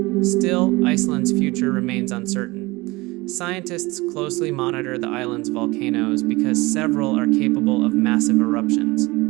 Still, Iceland's future remains uncertain. Scientists closely monitor the island's volcanoes because several are capable of massive eruptions.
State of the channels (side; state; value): left; quieter; 22.4 dB